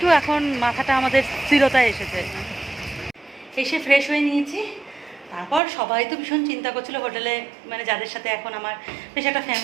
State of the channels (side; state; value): left; drops out; at 5.6 s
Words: এখন মাথাটা আমাদের স্থিরতায় এসেছে। এসে ফ্রেশ হয়ে নিয়েছি। তারপর সবাই তো ভীষণ চিন্তা করছিল হোটেলে, মানে যাদের সাথে এখন আমার বেশ একটা